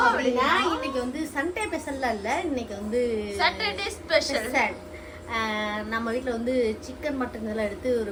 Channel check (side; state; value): both; identical; correlation 1.00